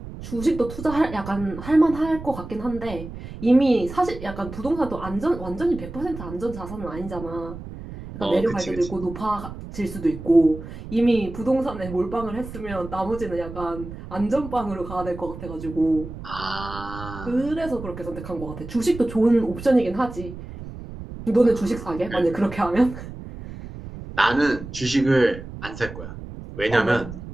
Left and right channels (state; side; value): noise; right; rumble, 11 dB below the sound